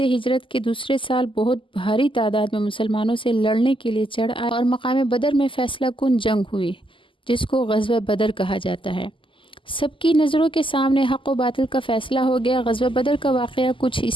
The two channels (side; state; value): right; late; 0.25 ms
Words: ہجرت کے دوسرے سال بہت بھاری تعداد میں مسلمانوں سے لڑنے کے لیے چڑھ آئے اور مقام بدر میں فیصلہ کن جنگ ہوئی، جس کو غزوہ بدر کہا جاتا ہے۔ سب کی نظروں کے سامنے حق و باطل کا فیصلہ ہو گیا۔ غزوہ بدر کا واقعہ کچھ